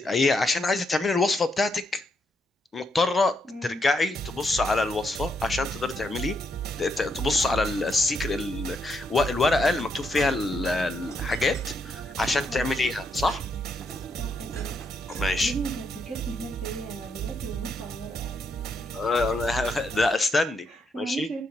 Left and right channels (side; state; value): both; normal; correlation 0.78